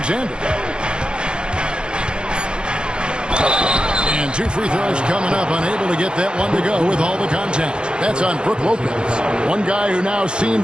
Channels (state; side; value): late; left; 0.051 ms